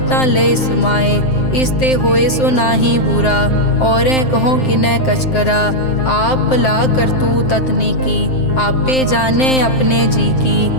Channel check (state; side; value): late; right; 7.7 ms